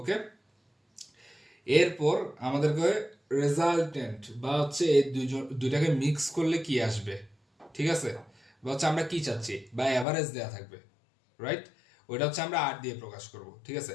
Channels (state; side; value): drops out; right; at 10.1 s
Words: এরপর আমাদেরকে রেজাল্টেন্ট বা হচ্ছে এই দুইটাকে মিক্স করলে কি আসবে, ঠিক আছে, বা হচ্ছে আমরা কি চাচ্ছি, বা অ্যাভারেজ দেওয়া থাকবে, রাইট। ওইটা হচ্ছে আমরা আর দিয়ে প্রকাশ করব, ঠিক আছে।